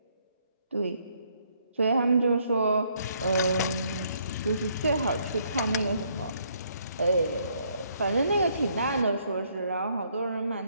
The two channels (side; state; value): both; inverted; correlation -0.69